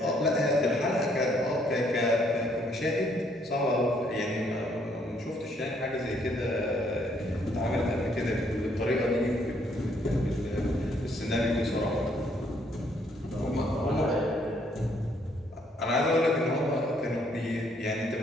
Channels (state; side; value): normal; both; correlation 0.68